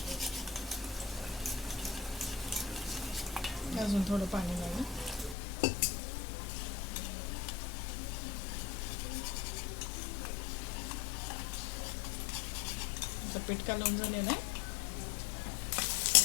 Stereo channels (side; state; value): right; drops out; at 5.4 s